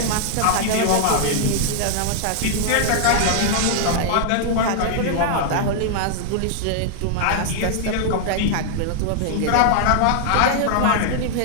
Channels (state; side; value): different; both; correlation -0.01